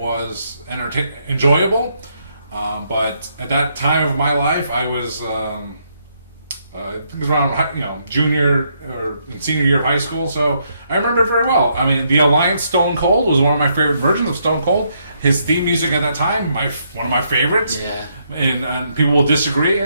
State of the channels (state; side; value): inverted; both; correlation -0.75